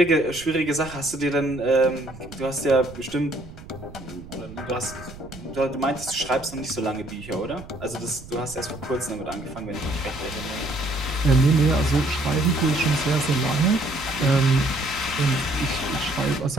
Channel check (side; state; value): right; noise; rumble, 16 dB below the sound